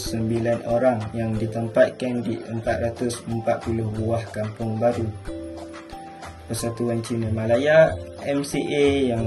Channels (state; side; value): identical; both; correlation 1.00